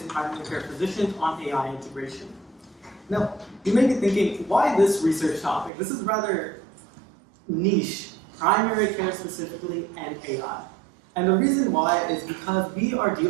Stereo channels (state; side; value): drops out; left; at 5.7 s